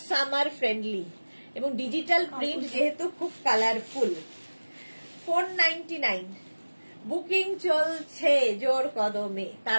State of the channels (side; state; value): both; inverted; correlation -1.00